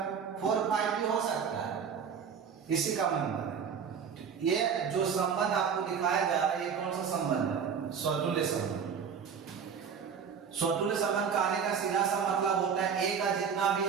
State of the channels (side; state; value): left; quieter; 6.8 dB